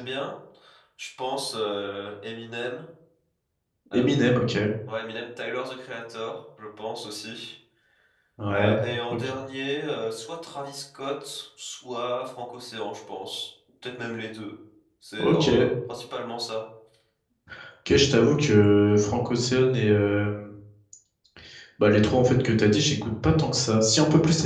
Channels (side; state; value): both; identical; correlation 1.00